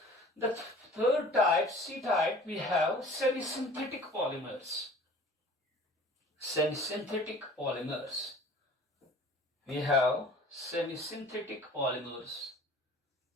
The third type, C type, we have semi-synthetic polymers. Semi-synthetic polymers. We have semi-synthetic polymers.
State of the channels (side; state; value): both; normal; correlation 0.46